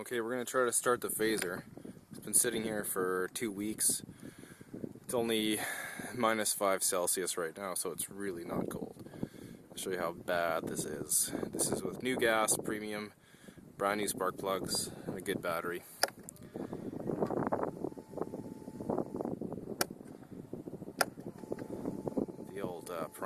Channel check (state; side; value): identical; both; correlation 1.00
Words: we're going to try to start the Phazer. It's been sitting here for 2 weeks. It's only -5 Celsius right now, so it's really not cold. I'll show you how bad this is. This is with new gas, premium, brand new spark plugs, and a good battery. The old